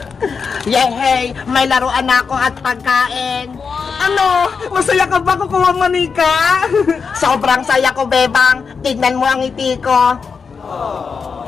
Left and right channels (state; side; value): quieter; right; 5.5 dB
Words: Yehey, may laruan ako at pagkain. Ano? Masaya ka ba, Kukawa Manika? Sobrang saya ko, Bebang. Tignan mo ang ngiti ko.